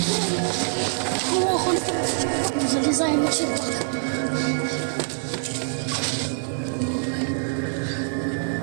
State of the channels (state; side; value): silent; left; 62 dB below the other